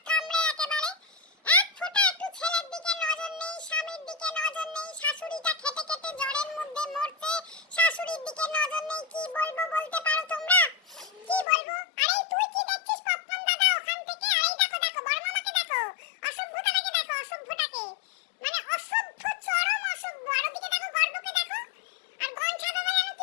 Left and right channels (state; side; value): drops out; right; at 11.5 s